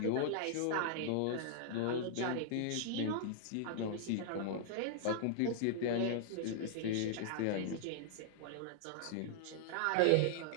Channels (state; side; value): different; both; correlation -0.01